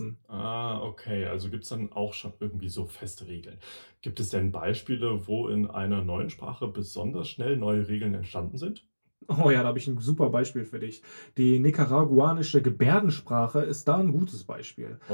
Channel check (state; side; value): inverted; both; correlation -1.00